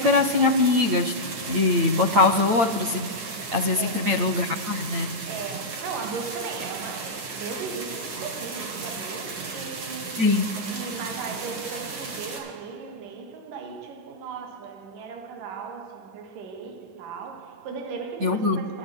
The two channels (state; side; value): late; left; 9.4 ms